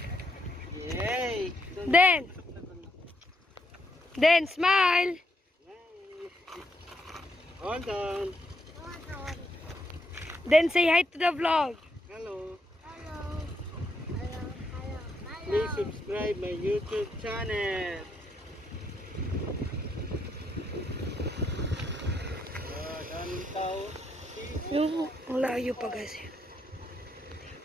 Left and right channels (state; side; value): normal; both; correlation 0.77